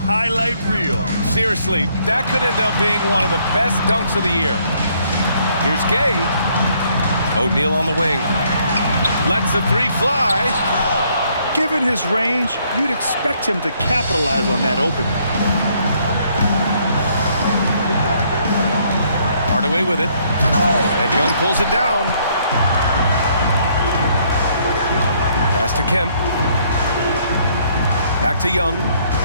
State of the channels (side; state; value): both; inverted; correlation -0.67